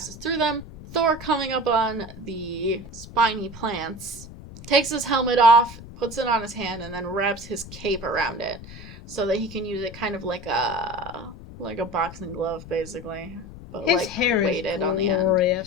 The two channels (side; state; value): left; noise; rumble, 15 dB below the sound